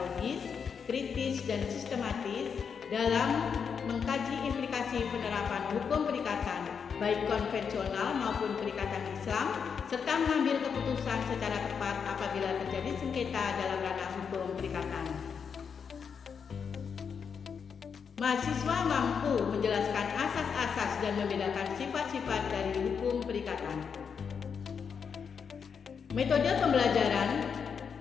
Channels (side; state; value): right; quieter; 6.5 dB